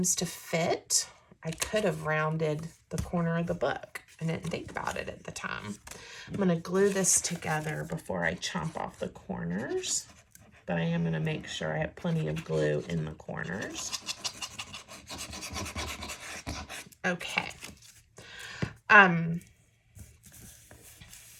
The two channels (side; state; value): both; identical; correlation 1.00